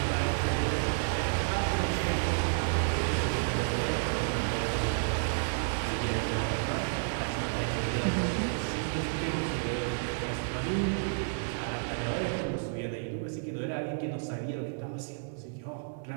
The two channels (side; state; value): left; silent; digital silence